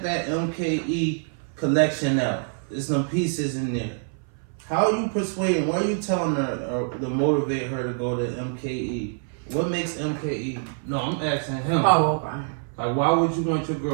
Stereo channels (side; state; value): left; silent; 58 dB below the other